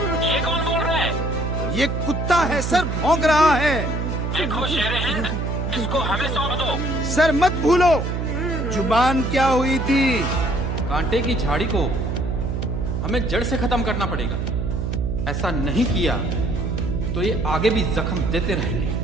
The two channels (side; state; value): right; noise; hum, 1 dB below the sound